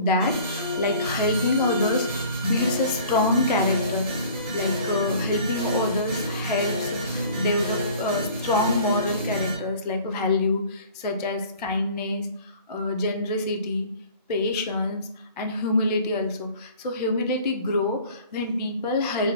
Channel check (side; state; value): both; inverted; correlation -0.48